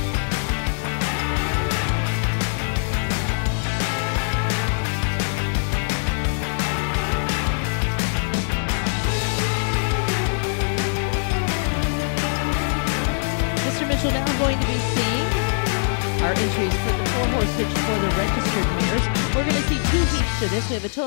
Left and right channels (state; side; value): silent; right; digital silence